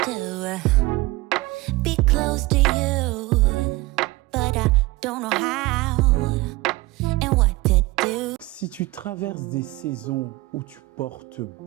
be close to you, but I don't know how and what to do. Si tu traverses des saisons où tu portes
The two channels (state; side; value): quieter; left; 20.7 dB